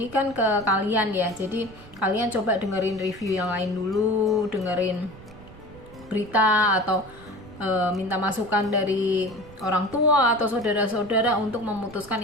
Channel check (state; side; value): noise; right; rumble, 20 dB below the sound